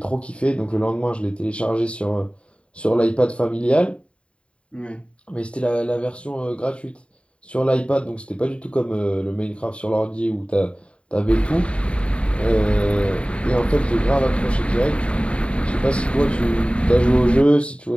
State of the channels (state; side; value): late; right; 0.059 ms